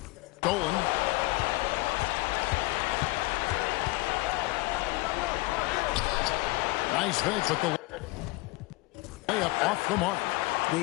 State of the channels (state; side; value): quieter; right; 21.8 dB